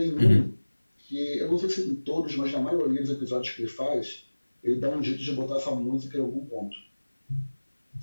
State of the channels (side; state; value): both; inverted; correlation -1.00